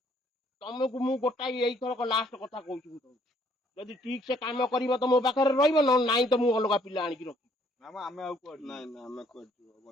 ତମକୁ ମୁଁ ଗୋଟାଏ ଏଇଥରକ ଲାଷ୍ଟ କଥା କହୁଛି, ଯଦି ଠିକ ସେ କାମ କରିବ ତ ମୋ ପାଖରେ ରହିବ, ନହେଲେ ନାଇଁ ତ ମୁଁ ଅଲଗା ପିଲା ଆଣିକି ରଖିବି। ଆମେ ଆଉ କୁଆଡେ ନାଇଁ ନାଇଁ ଆମେ କୁଆଡେ ଯିବ,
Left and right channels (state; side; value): normal; both; correlation 0.64